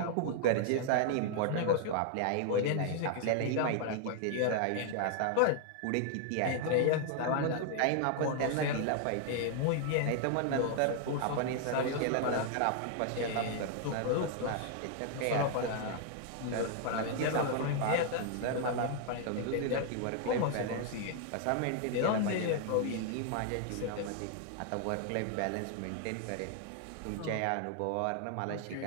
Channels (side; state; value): both; different; correlation 0.00